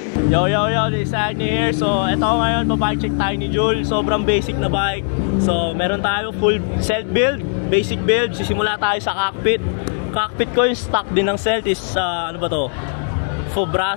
Yo, this is Agni here. So, ito ngayon, pa-bike check tayo ni Jul. Sobrang basic na bike. So, meron tayo full Celt build, basic build. Sisimula tayo sa cockpit. Cockpit ko yung stock din ng Celt is, ano ba to?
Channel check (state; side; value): silent; right; 67 dB below the other